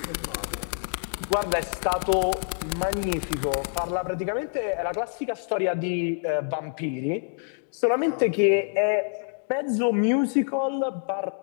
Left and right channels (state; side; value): silent; right; 61 dB below the other